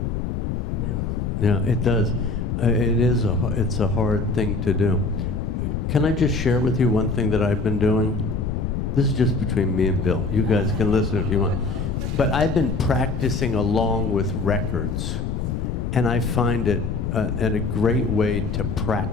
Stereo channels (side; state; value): left; noise; rumble, 2 dB below the sound